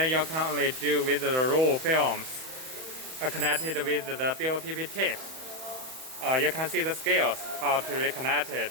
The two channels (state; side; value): late; left; 31 ms